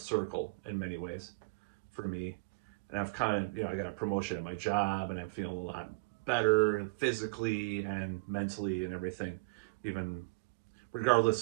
in many ways for me. And I've kind of, I got a promotion at my job and I'm feeling a lot better physically and mentally and everything, even regardless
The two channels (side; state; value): left; quieter; 29.1 dB